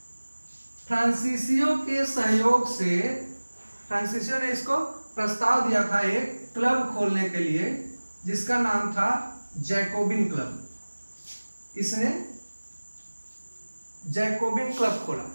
फ्रांसीसियों के सहयोग से, फ्रांसीसियों ने इसको प्रस्ताव दिया था एक क्लब खोलने के लिए जिसका नाम था जैकोबिन क्लब। इसने जैकोबिन क्लब खोला।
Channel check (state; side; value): inverted; both; correlation -1.00